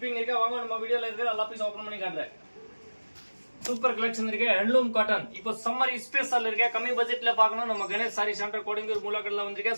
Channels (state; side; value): inverted; both; correlation -1.00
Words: இருக்கு. வாங்க நம்ம வீடியோல இருக்கு. எல்லா பீஸ் ஓபன் பண்ணி காட்டுறேன். சூப்பர் கலெக்ஷன் இருக்கு ஹேண்ட்லூம் காட்டன். இப்போ சம்மர் ஸ்பெஷல் இருக்கு. கம்மி பட்ஜெட்ல பார்க்கணும் நம்ம கணேஷ் சாரி சென்டர் கோடிங்கூர் மூலக்கடல வந்திருக்க